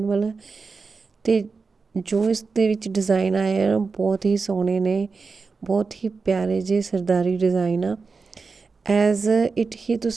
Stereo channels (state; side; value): quieter; left; 4.6 dB